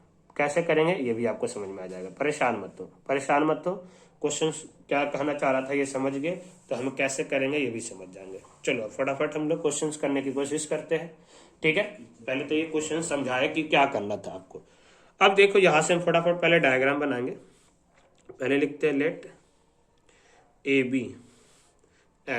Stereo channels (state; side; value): identical; both; correlation 1.00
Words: कैसे करेंगे ये भी आपको समझ में आ जाएगा। परेशान मत हो। क्वेश्चन क्या कहना चाह रहा था ये समझ गए तो हम कैसे करेंगे ये भी समझ जाएंगे। चलो फटाफट हम लोग क्वेश्चन करने की कोशिश करते हैं। ठीक है, पहले तो ये क्वेश्चन समझाए कि क्या करना था आपको। अब देखो, यहां से हम फटाफट पहले डायग्राम बनाएंगे। पहले लिखते हैं let A B